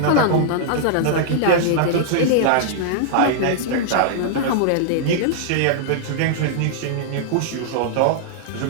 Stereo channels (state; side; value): different; both; correlation -0.01